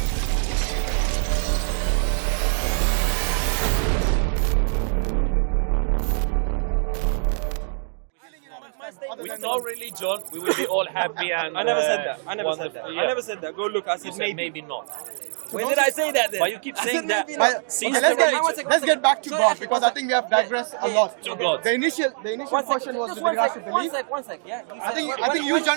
With no religion, we will be all happy and I never said that. I never said wonderful. that. Yeah. I never said that. Go look. I You said said maybe. maybe not. When did I say that then? But you keep I said saying that. maybe not. But, Since okay, the religion- let's get back to Sorry, God actually, because I think we have digressed a lot. To God. The initial question was with regards to belief. One sec. Yeah. I think you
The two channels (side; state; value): left; silent; digital silence